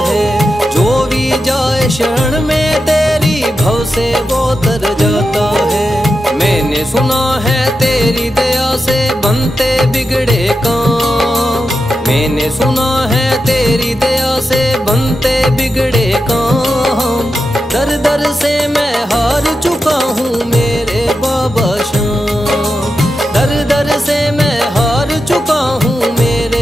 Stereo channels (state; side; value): normal; both; correlation 0.89